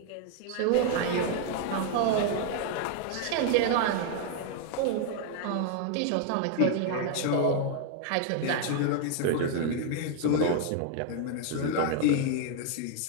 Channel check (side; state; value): both; different; correlation 0.00